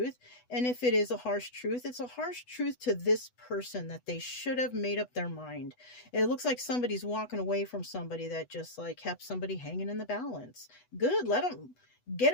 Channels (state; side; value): late; right; 8.1 ms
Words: And if it is a harsh truth, it's a harsh truth to this person that they should have made up their mind. It looks like somebody's walking away from somebody that just like kept somebody hanging in the balance. Good. Let them get